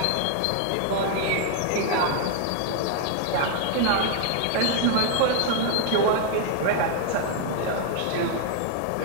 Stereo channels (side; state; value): both; different; correlation 0.00